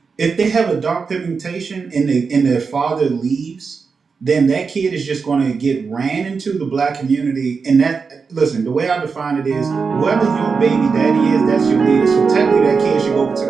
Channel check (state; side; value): quieter; left; 5.2 dB